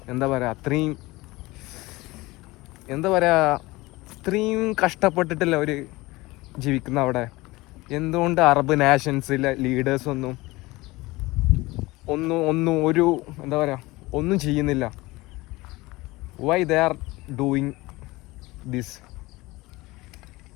എന്താ പറയുക, അത്രയും കഷ്ടപ്പെട്ടിട്ടല്ല അവർ ജീവിക്കുന്ന അവിടെ. എന്തുകൊണ്ട് അറബ് നാഷൻസിലെ ലീഡേഴ്സൊന്നും ഒരു എന്താ പറയുക ഒന്നും ചെയ്യുന്നില്ല? Why they are doing this?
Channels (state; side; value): quieter; right; 21.0 dB